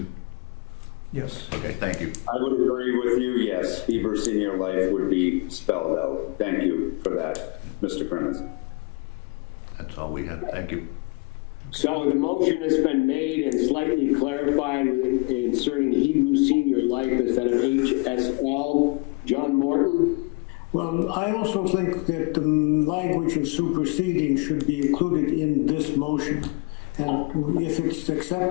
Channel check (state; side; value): quieter; right; 30.1 dB